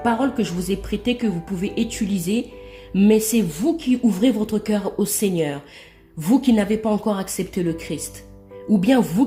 paroles que je vous ai prêtées que vous pouvez utiliser. Mais c'est vous qui ouvrez votre cœur au Seigneur. Vous qui n'avez pas encore accepté le Christ. Ou bien vous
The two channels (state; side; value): identical; both; correlation 1.00